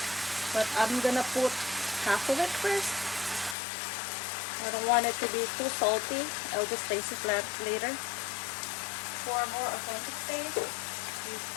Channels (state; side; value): drops out; right; at 3.6 s